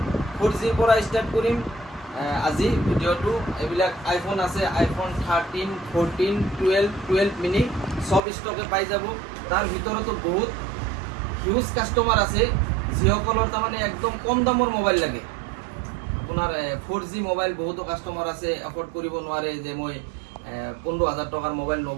4G পৰা ষ্টাৰ্ট কৰিম আজি ভিডিঅ'টো। এইবিলাক আইফোন আছে, আইফোন 13, 14, 12 মিনি সব ষ্টকে পাই যাব। তাৰ ভিতৰতো বহুত হিউজ কাষ্টমাৰ আছে যিসকলৰ তাৰমানে একদম কম দামৰ মোবাইল লাগে। আপোনাৰ 4G মোবাইল বহুতো কাষ্টমাৰ আছে এফৰ্ড কৰিব নোৱাৰে, যে মই 15000 টকাৰ মোবাইল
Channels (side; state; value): left; drops out; at 8.2 s